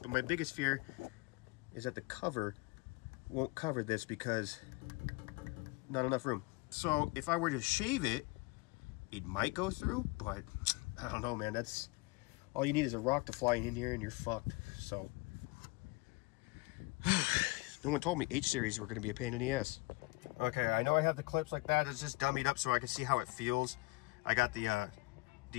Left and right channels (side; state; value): right; quieter; 24.0 dB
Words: But my biggest fear is that the cover won't cover this because not enough room. So if I were to shave it, it might go through, but I don't know, man. That's all you need is a rock to fly in here and you're fucked. So no one told me H-series were going to be a pain in the ass. Okay, I know I have the clips like that. It's just dummied up so I can see how it feels. I got the